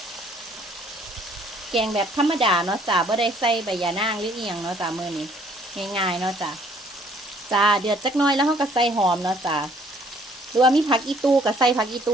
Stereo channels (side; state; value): both; normal; correlation 0.61